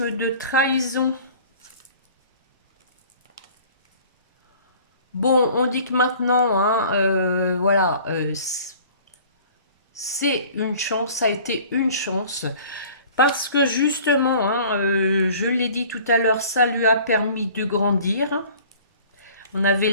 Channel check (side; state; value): both; inverted; correlation -0.48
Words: de trahison. Bon, on dit que maintenant, hein, voilà, c'est une chance, ça a été une chance. Parce que justement, hein, je l'ai dit tout à l'heure, ça lui a permis de grandir. On avait